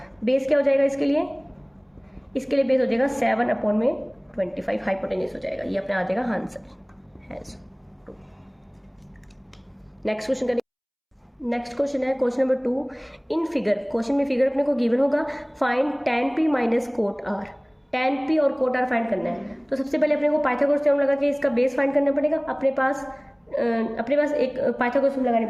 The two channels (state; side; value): identical; both; correlation 1.00